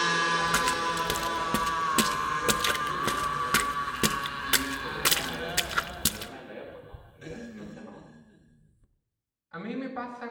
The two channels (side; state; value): both; identical; correlation 1.00